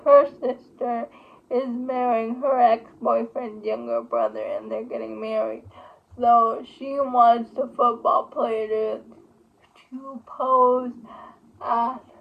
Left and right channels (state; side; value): identical; both; correlation 1.00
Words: her sister is marrying her ex-boyfriend's younger brother, and they're getting married. So she wants the football player to pose as